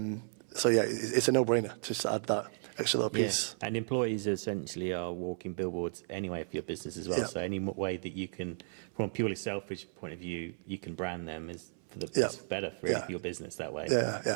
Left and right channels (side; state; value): left; silent; 55 dB below the other